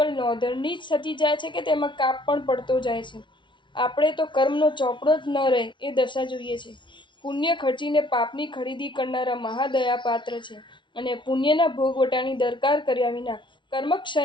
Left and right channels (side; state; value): right; late; 0.24 ms